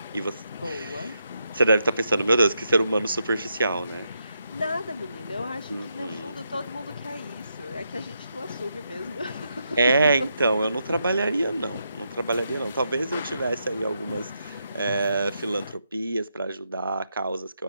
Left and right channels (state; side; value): inverted; both; correlation -0.82